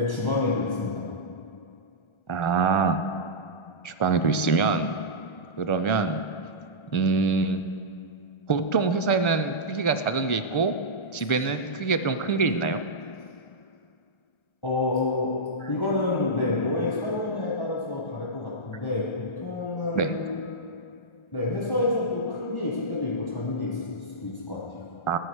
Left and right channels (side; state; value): right; late; 1.4 ms